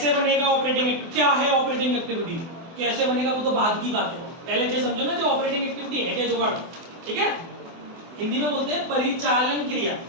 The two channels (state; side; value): late; left; 24 ms